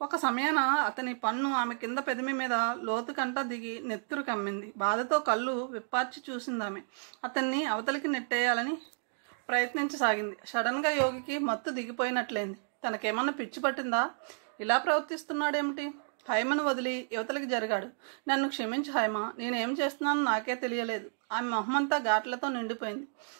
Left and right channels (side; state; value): left; silent; digital silence